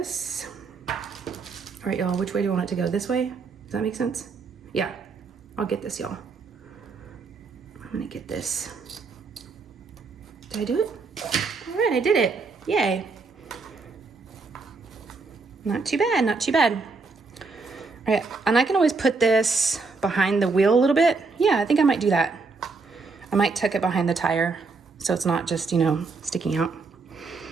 All right, y'all, which way do you want it to go? This way? Does that make sense? Yeah, I'll get this, y'all. I'm gonna get this. Did I do it? All right, I did it. Yay. Not too bad, not too bad. All right, and I can always put this behind the wheel a little bit. Yeah, I think I might do that. I might tuck it behind the tire so it's not just, you know, sticking out.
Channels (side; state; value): left; quieter; 4.2 dB